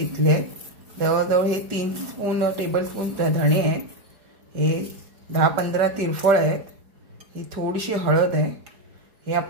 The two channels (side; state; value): left; late; 4.7 ms